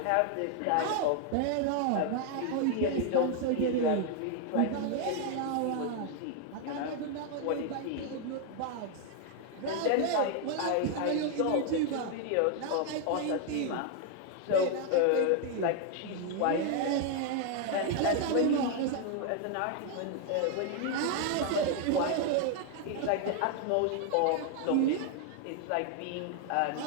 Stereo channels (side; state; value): both; different; correlation 0.00